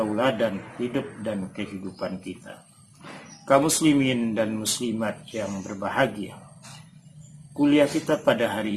hidup dan kehidupan kita. Kaum muslimin dan muslimat yang berbahagia, kuliah kita pada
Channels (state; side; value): identical; both; correlation 1.00